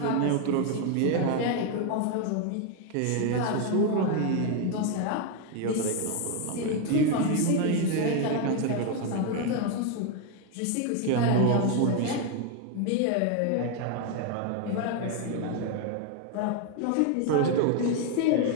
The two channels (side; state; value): both; different; correlation 0.01